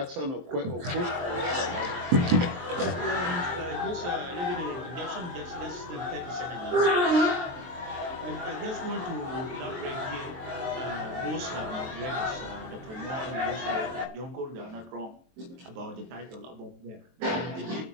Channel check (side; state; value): left; late; 23 ms